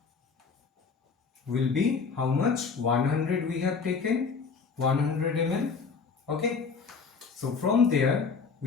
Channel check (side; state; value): right; quieter; 5.2 dB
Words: will be how much? 100 we have taken, 100 ml. Okay. So from there